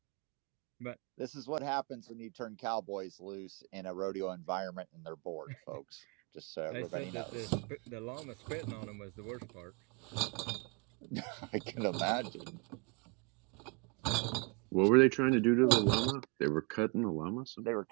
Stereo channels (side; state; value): left; quieter; 30.4 dB